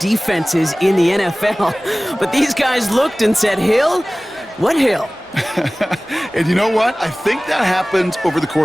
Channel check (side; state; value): both; normal; correlation 0.98